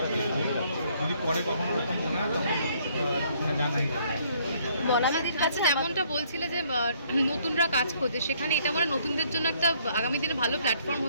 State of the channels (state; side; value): inverted; both; correlation -0.65